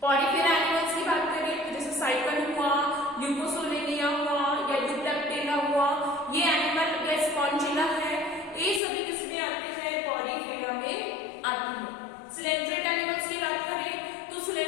पॉलीफेरा एनिमल्स की बात करें तो जैसे साइकन हुआ, ल्यूकोसोलेनिया हुआ या यूप्लेक्टेला हुआ, ये एनिमल या स्पॉन्जिला है, ये सभी किसमें आते हैं, पॉलीफेरा में आते हैं। सिलेंड्रेटा एनिमल्स की बात करें तो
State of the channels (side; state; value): right; drops out; at 8.8 s